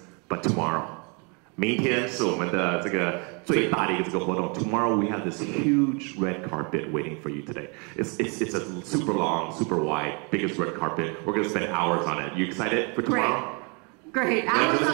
but tomorrow. 明天是我们的这个最大的一个这个活动. Tomorrow we have this huge red carpet waiting for you today. It's a super long, super wide, biggest red carpet. We're going to spend hours on it. You excited for tomorrow? Great. Hours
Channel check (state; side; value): quieter; left; 33.9 dB